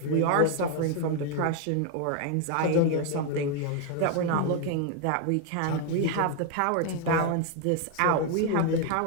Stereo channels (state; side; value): different; both; correlation 0.01